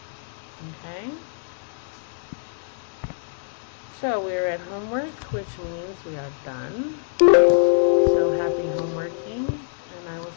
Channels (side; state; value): right; silent; digital silence